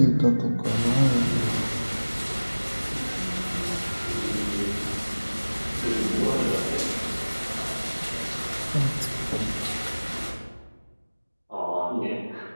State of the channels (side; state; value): both; inverted; correlation -1.00